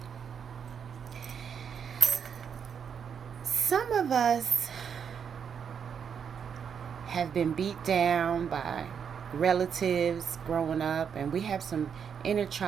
Some of us have been beat down by relatives growing up, and we have some inner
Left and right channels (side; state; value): left; quieter; 7.3 dB